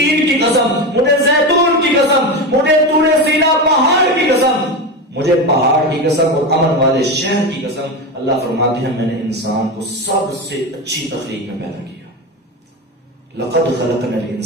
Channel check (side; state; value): both; normal; correlation 0.19